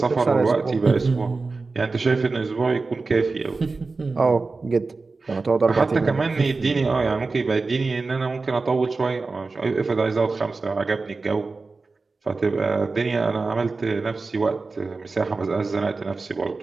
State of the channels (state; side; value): quieter; left; 3.9 dB